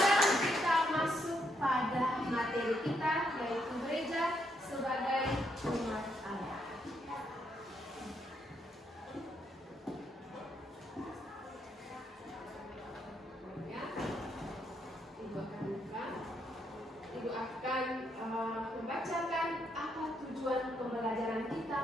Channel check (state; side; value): normal; both; correlation 0.77